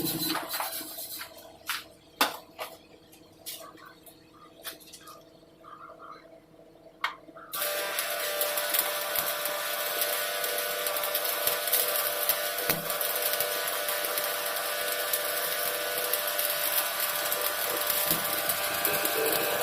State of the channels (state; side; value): identical; both; correlation 1.00